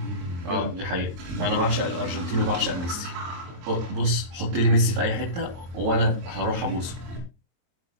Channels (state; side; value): late; left; 23 ms